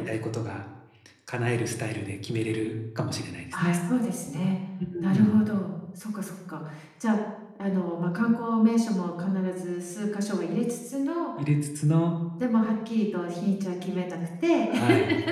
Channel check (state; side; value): identical; both; correlation 1.00